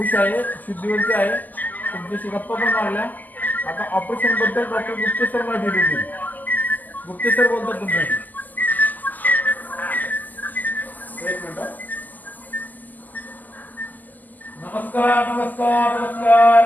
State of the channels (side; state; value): right; late; 0.084 ms